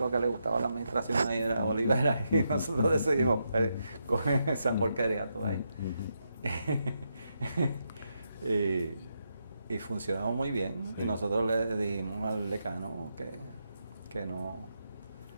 que le gustaba la administración ahí era Olivera. Y nosotros decidimos, coge esa porquería tú ahí. Y funcionaba muy bien. Y nosotros le dijimos al decano que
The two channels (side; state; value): both; inverted; correlation -0.83